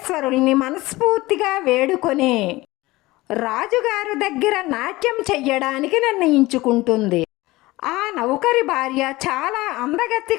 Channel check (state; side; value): quieter; right; 19.8 dB